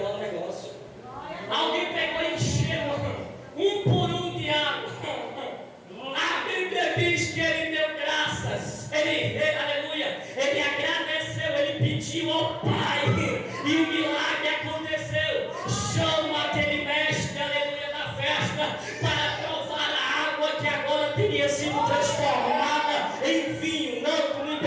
o negócio. Alguém pegou e encheu um por um de água. A Bíblia diz que ele deu graças. Aleluia. Ele agradeceu, ele pediu ao Pai. E o milagre aconteceu. Chama aquele mestre, aleluia, da festa para provar a água que agora teria sido transformada em vinho. Não, tu não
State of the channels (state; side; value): identical; both; correlation 1.00